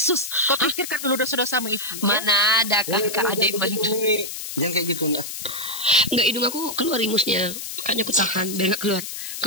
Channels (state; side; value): noise; left; hiss, 8 dB below the sound